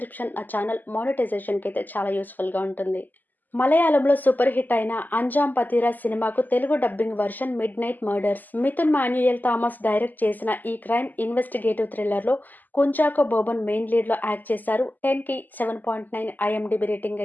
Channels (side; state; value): right; late; 0.085 ms